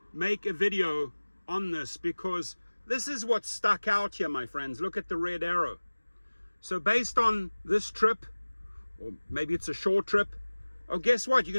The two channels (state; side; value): inverted; both; correlation -1.00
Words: make a video on this, because this is what stuck out here, my friends. Look at the red arrow. So based on this trip, or maybe it's a short trip, oh, guess what? You're